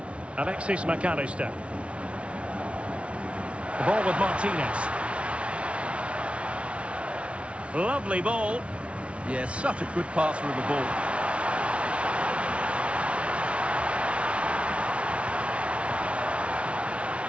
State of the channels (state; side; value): late; left; 0.061 ms